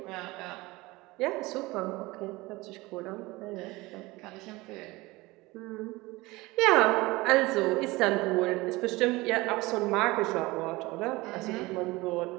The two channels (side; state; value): left; quieter; 21.3 dB